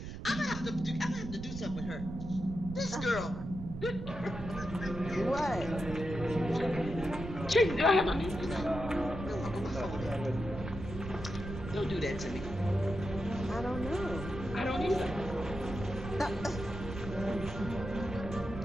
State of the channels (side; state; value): right; noise; rumble, 8 dB below the sound